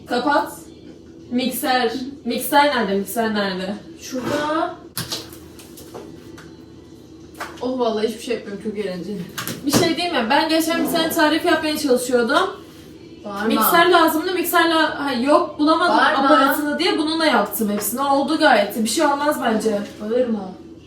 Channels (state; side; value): identical; both; correlation 1.00